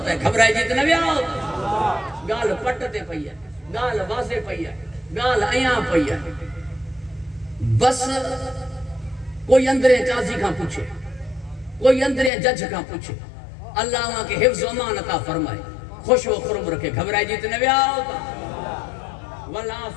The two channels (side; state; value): right; drops out; at 12.3 s